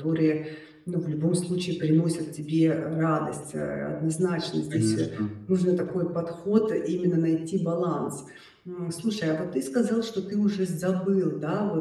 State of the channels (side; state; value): both; identical; correlation 1.00